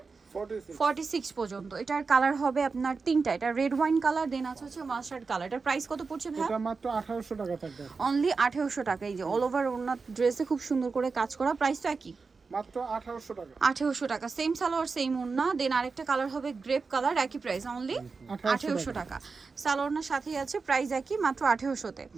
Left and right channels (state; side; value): quieter; left; 4.6 dB